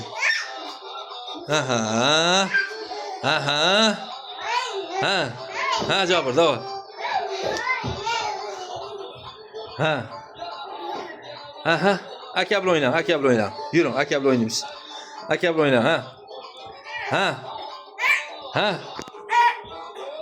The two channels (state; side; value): identical; both; correlation 1.00